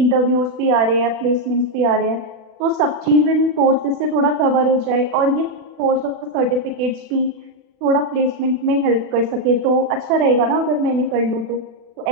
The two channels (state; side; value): late; left; 40 ms